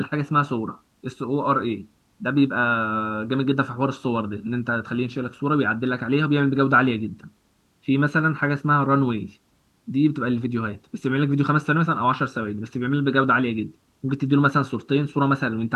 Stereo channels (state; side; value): identical; both; correlation 1.00